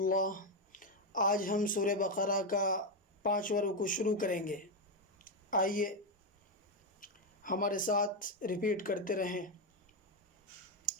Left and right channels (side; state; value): both; normal; correlation 0.06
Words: آج ہم سورہ بقرہ کا 5واں رکوع شروع کریں گے۔ آئیے ہمارے ساتھ ریپیٹ کرتے رہیں۔